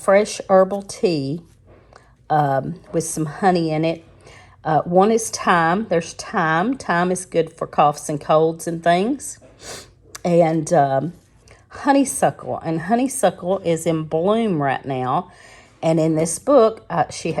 herbal tea with some honey in it. One is thyme. There's thyme. Thyme is good for coughs and colds and things. And honeysuckle. And honeysuckle is in bloom right now. And in this book, she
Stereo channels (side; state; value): both; identical; correlation 1.00